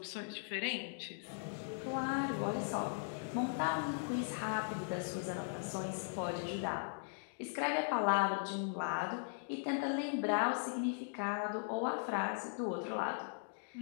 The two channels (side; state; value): right; silent; digital silence